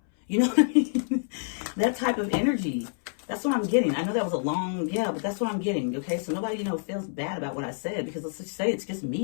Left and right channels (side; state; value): right; silent; 60 dB below the other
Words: You know what I mean? That type of energy. That's what I'm getting. I know that was a long, but that's what I'm getting. Okay, so nobody, feels bad about what I said because let's just say it's just